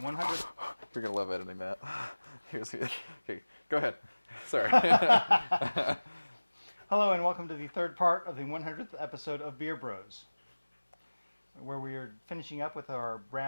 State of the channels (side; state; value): both; inverted; correlation -1.00